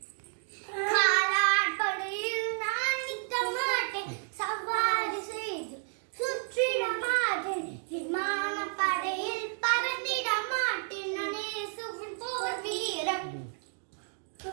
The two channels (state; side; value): silent; left; 57 dB below the other